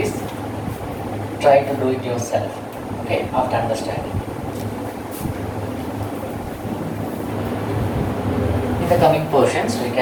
try to do it yourself. Okay, after understanding. In the coming portions, we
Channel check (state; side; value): identical; both; correlation 1.00